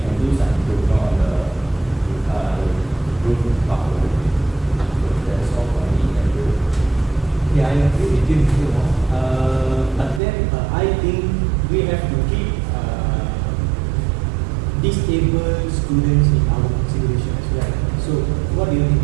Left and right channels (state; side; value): drops out; left; at 10.2 s